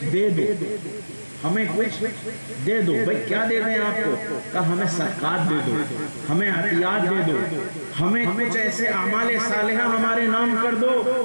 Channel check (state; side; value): inverted; both; correlation -1.00